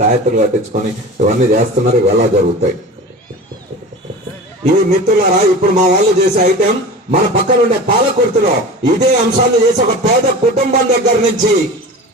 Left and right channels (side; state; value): both; normal; correlation 0.34